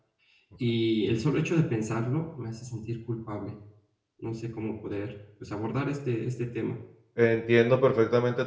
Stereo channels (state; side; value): identical; both; correlation 1.00